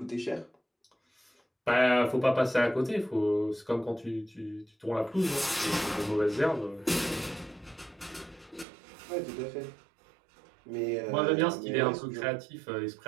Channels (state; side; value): drops out; left; at 8.7 s